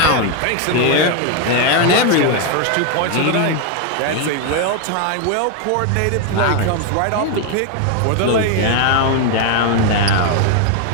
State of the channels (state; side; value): different; both; correlation 0.01